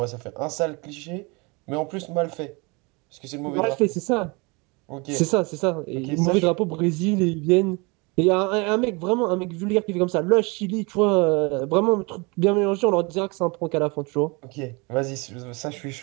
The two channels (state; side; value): quieter; left; 28.2 dB